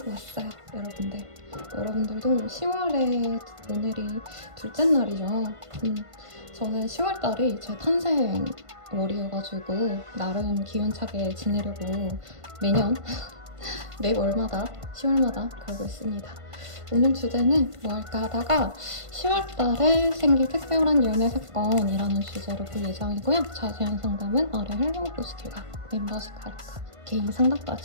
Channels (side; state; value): left; late; 1.5 ms